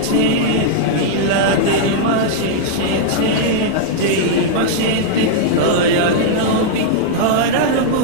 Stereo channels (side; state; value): both; different; correlation -0.01